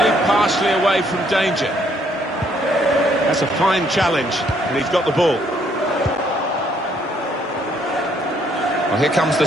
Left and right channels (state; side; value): normal; both; correlation 0.68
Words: Away from danger. That's a fine challenge, and he's got the ball. Well, here comes the